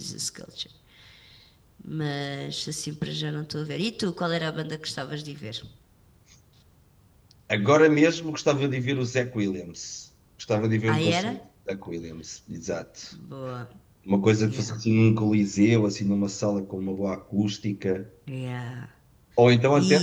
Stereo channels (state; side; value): identical; both; correlation 1.00